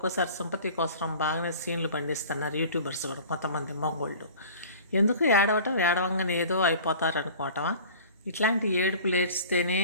సింపతి కోసం బాగానే సీన్లు పండిస్తున్నారు యూట్యూబర్స్ కూడా, కొంతమంది మగోళ్ళు. ఎందుకు ఏడవంగానే ఏదో అయిపోతారు అనుకోవటమా? ఇట్లాంటి ఏడుపులు ఏడిస్తేనే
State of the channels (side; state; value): both; inverted; correlation -0.43